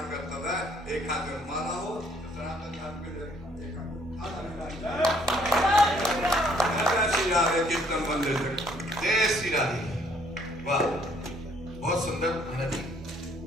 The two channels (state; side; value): normal; both; correlation 0.64